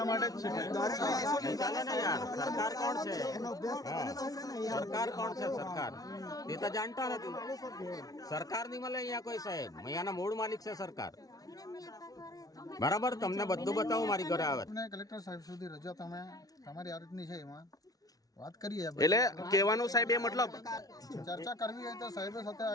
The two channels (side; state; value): right; late; 0.18 ms